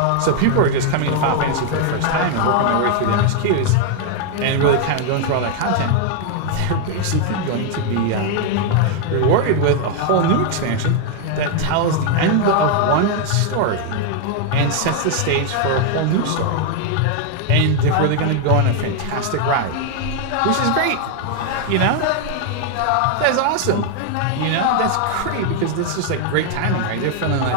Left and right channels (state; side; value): different; both; correlation 0.00